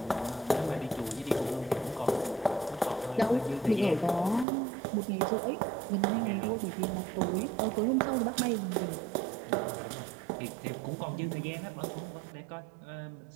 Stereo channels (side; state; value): left; drops out; at 4.5 s